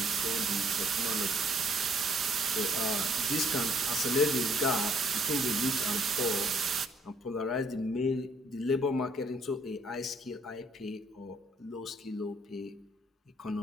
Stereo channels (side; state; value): both; normal; correlation 0.65